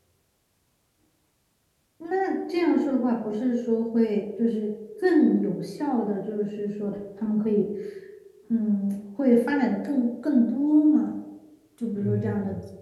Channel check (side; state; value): both; identical; correlation 1.00